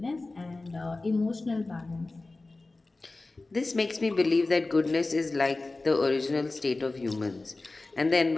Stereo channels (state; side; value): quieter; right; 3.2 dB